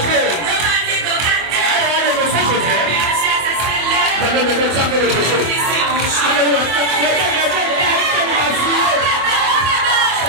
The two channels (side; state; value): left; late; 24 ms